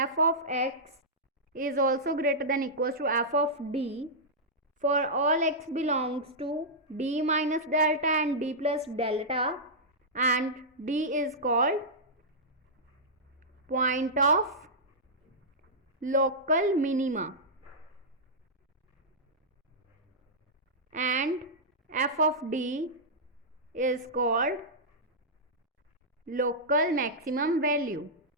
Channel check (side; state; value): both; normal; correlation -0.11